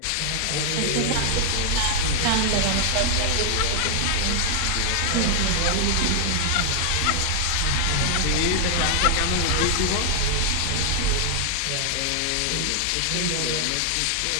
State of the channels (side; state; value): both; different; correlation 0.00